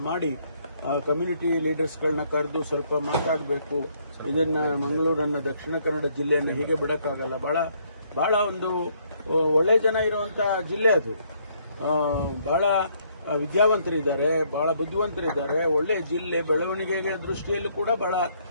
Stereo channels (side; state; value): both; inverted; correlation -0.68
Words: ಮಾಡಿ ಕಮ್ಯುನಿಟಿ ಲೀಡರ್ಸ್ಗಳನ್ನ ಕರೆದು ಸ್ವಲ್ಪ ಮಾತಾಡಬೇಕು. ಇದನ್ನ ಮಂಗಳೂರನ್ನ, ದಕ್ಷಿಣ ಕನ್ನಡ ಜಿಲ್ಲೆಯನ್ನು ಹೀಗೆ ಬಿಡಕ್ಕಾಗಲ್ಲ. ಬಹಳ ಒಂದು ಒಳ್ಳೆ ಜನ ಇರುವಂತ ಜಿಲ್ಲೆ ಅದು. ಬಹಳ ವಿದ್ಯಾವಂತರಿದ್ದಾರೆ, ಬಹಳ ಬುದ್ಧಿವಂತರಿದ್ದಾರೆ. ಒಳ್ಳೆ ಜಿಲ್ಲೆ, ಬೆಳವಣಿಗೆಗೆ ದೃಷ್ಟಿಯಲ್ಲೂ ಕೂಡ ಬಹಳ